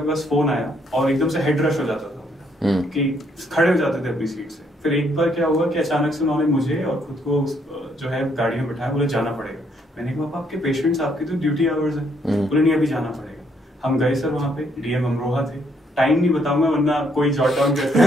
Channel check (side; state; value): both; normal; correlation 0.71